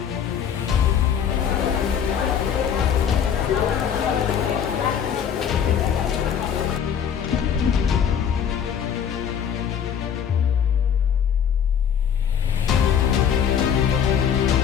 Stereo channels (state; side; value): quieter; right; 8.1 dB